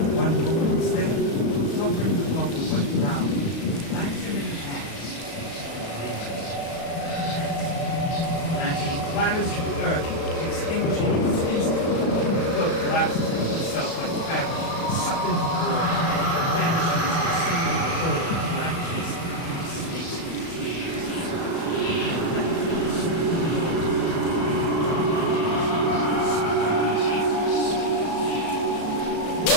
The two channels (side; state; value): right; late; 35 ms